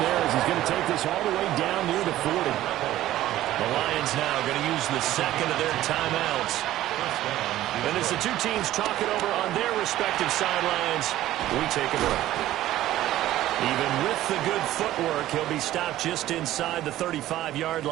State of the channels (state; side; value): quieter; left; 14.2 dB